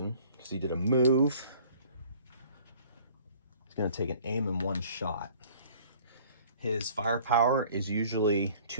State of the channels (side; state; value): both; inverted; correlation -0.52